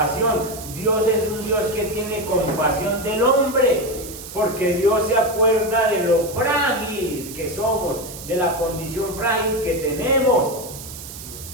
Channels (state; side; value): noise; right; hiss, 13 dB below the sound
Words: Dios es un Dios que tiene compasión del hombre, porque Dios se acuerda de lo frágil que somos, de la condición frágil que tenemos.